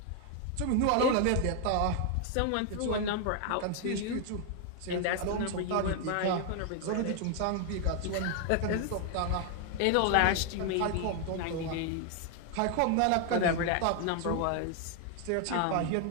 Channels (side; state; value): both; different; correlation 0.00